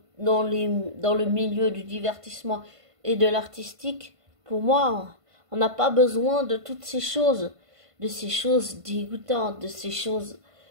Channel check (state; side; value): late; left; 1.5 ms